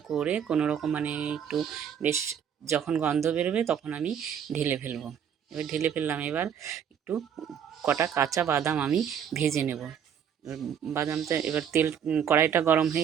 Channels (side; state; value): left; quieter; 8.3 dB